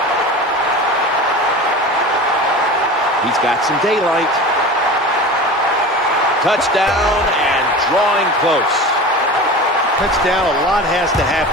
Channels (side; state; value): both; normal; correlation 0.33